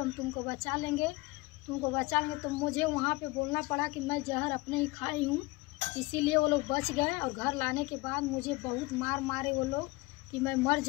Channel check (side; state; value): right; quieter; 23.0 dB